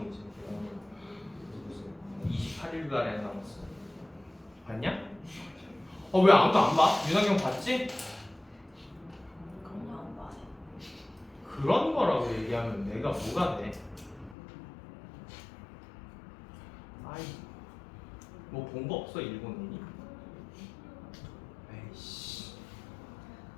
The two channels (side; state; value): right; drops out; at 14.4 s